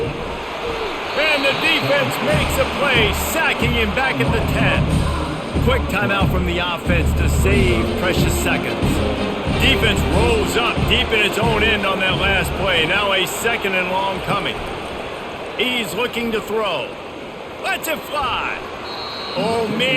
And the defense makes a play, sacking him back at the 10. Quick timeout from the offense to save precious seconds. Defense rolls up deep in its own end on that last play. Now a 2nd and long coming. He's looking to throw. Lets it fly. Oh,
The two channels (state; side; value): identical; both; correlation 1.00